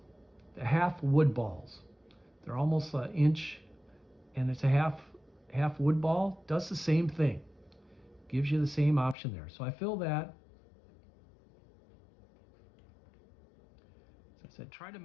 the half wood balls. They're almost an inch, and it's a half wood ball. Does the same thing. Gives you the same option there. So I fill that. As I said, try to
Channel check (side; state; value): right; drops out; at 9.2 s